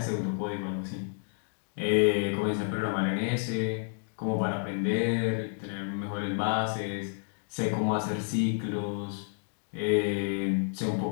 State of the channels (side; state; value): right; silent; 56 dB below the other